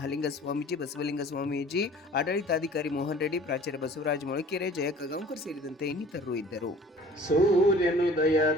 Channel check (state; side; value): normal; both; correlation 0.49